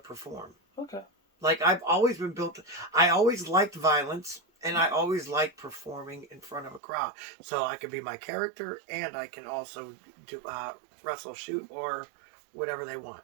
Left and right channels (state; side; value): drops out; left; at 6.8 s